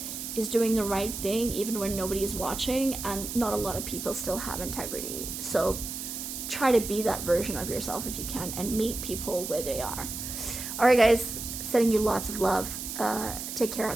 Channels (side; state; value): right; noise; hiss, 6 dB below the sound